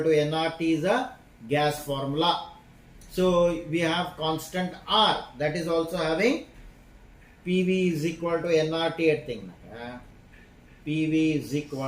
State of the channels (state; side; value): identical; both; correlation 1.00